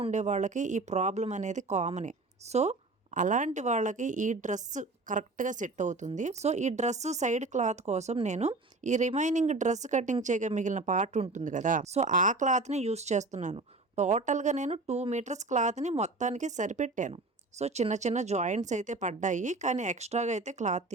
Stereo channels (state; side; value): quieter; left; 3.3 dB